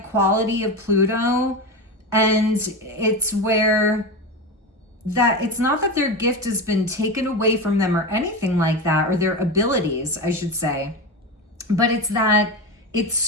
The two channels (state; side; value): normal; both; correlation 0.20